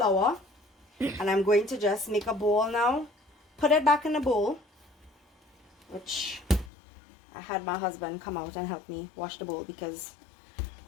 And I'm going to just make a bowl now. Put it back in the bowl, which I had my husband come out and help me wash the bowl because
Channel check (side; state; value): right; drops out; at 6.7 s